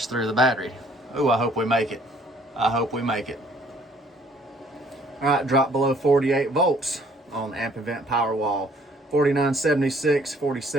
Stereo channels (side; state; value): both; normal; correlation 0.60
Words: through the battery. Oh, I hope we make it. I hope we make it. All right, drop below 48 volts on the Ampinvt Powerwall, 4976,